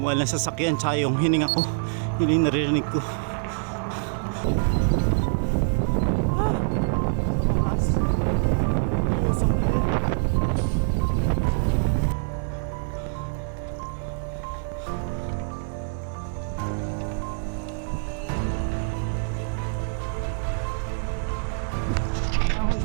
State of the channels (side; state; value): left; silent; digital silence